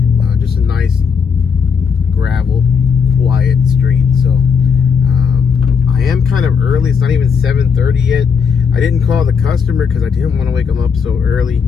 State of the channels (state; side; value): quieter; right; 6.2 dB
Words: Just a nice gravel, quiet street. So I am kind of early. It's not even 7:30 yet. I didn't call the customer because I didn't want to wake them up so early.